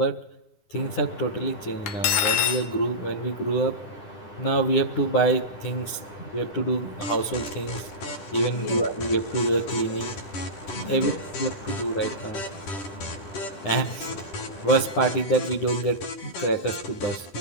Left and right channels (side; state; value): right; late; 9.9 ms